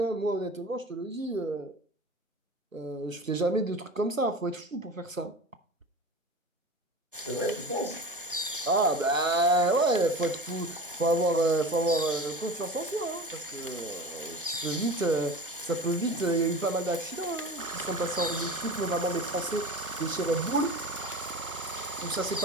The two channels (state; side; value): normal; both; correlation 0.33